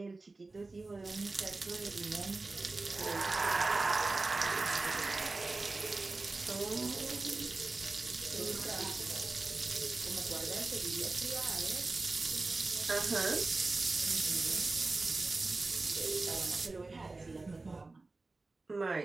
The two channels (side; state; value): left; quieter; 3.4 dB